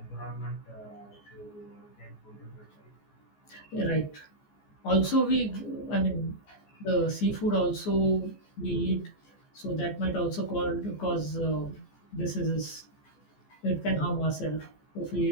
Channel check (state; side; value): late; right; 14 ms